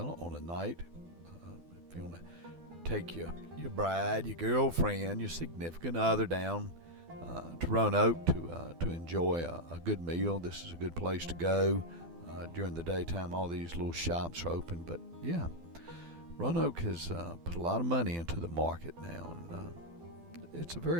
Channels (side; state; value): left; late; 12 ms